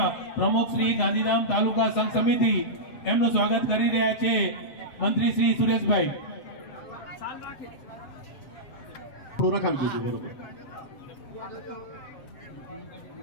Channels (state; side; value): late; right; 7.5 ms